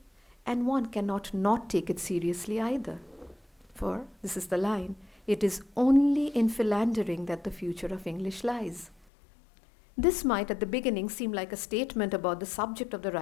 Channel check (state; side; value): drops out; right; at 9.1 s